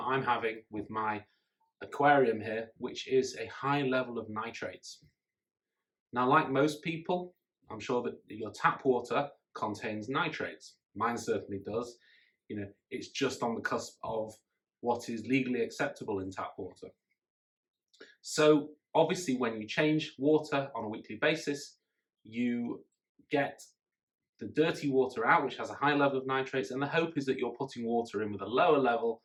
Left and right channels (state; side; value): identical; both; correlation 1.00